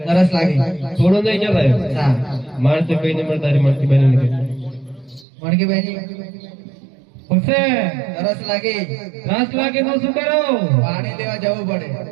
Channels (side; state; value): left; drops out; at 5.2 s